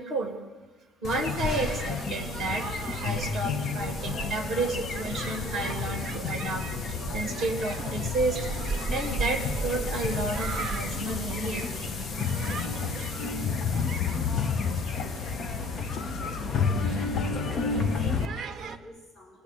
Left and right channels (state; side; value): normal; both; correlation 0.51